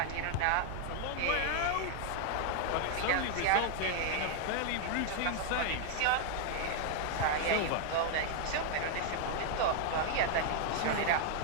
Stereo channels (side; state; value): both; different; correlation 0.00